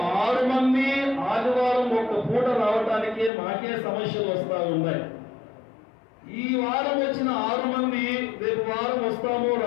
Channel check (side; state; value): right; drops out; at 3.3 s